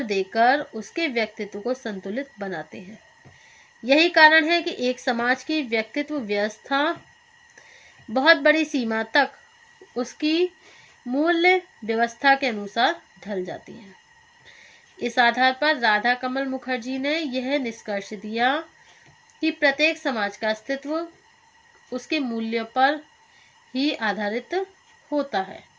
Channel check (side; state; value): both; identical; correlation 1.00